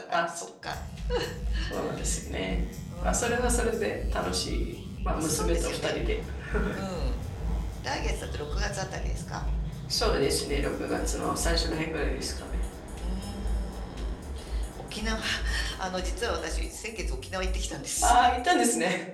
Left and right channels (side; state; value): both; identical; correlation 1.00